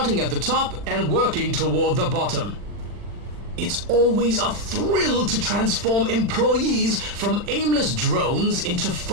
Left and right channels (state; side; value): late; left; 40 ms